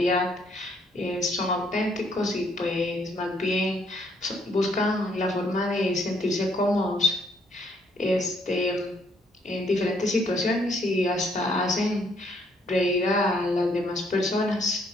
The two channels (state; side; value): normal; both; correlation 0.68